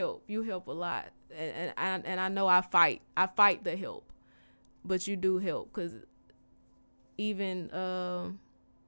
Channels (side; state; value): both; inverted; correlation -1.00